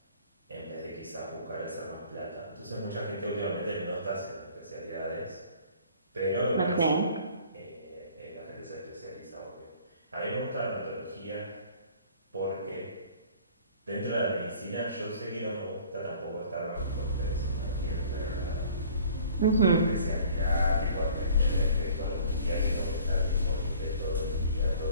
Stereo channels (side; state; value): both; inverted; correlation -0.51